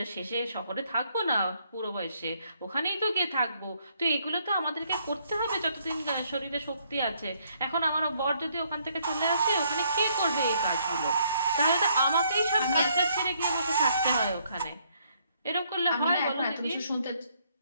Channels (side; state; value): both; inverted; correlation -0.70